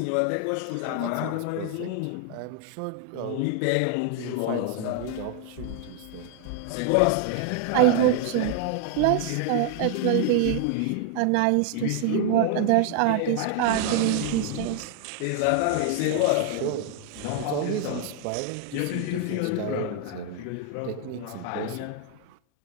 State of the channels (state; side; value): different; both; correlation 0.00